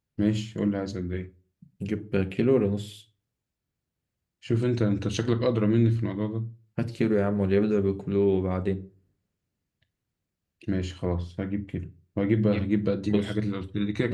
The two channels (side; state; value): both; identical; correlation 1.00